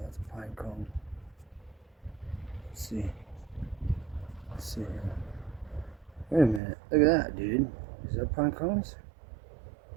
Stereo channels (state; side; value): drops out; left; at 6.6 s